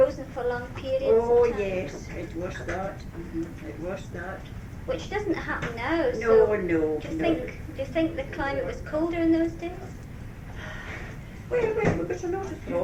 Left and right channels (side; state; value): both; identical; correlation 1.00